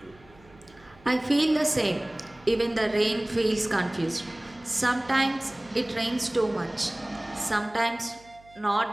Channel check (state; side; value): noise; right; hum, 27 dB below the sound